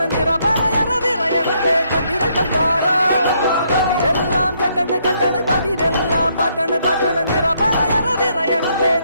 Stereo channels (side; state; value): both; inverted; correlation -0.72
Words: നിറ പറയറ വിറയട്ടെ കണ്ടിര കണ്ടാടാ കതിരെല്ലാം കെട്ടണ് കെട്ടണ് പതിരെല്ലാം പാറ്റണ് പാറ്റണ് നിറ പറയറ വിറയട്ടെ